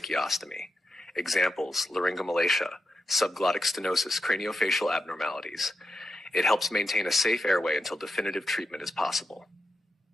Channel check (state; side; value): normal; both; correlation 0.88